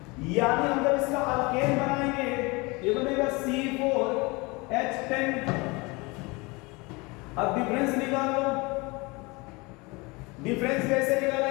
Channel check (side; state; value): right; quieter; 25.8 dB